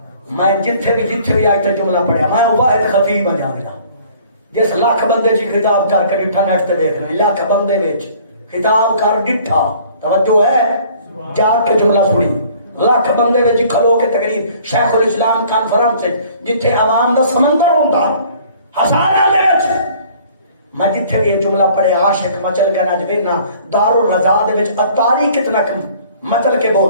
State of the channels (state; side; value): inverted; both; correlation -0.54